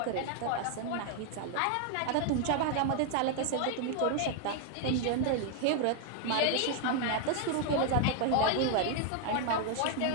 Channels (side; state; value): both; different; correlation 0.00